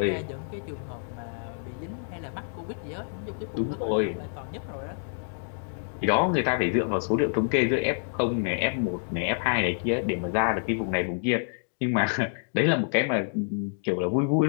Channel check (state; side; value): silent; right; digital silence